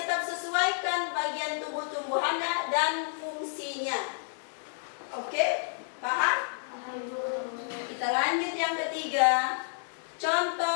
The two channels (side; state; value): right; silent; digital silence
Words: sesuaikan bagian tubuh-tumbuhannya dan fungsinya. Oke? Paham? Kita Kita lanjut yang ketiga.